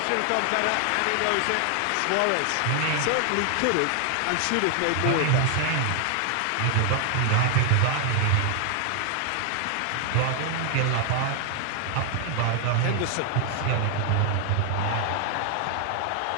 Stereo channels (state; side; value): different; both; correlation 0.00